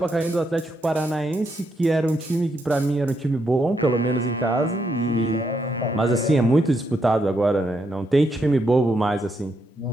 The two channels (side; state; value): both; normal; correlation 0.79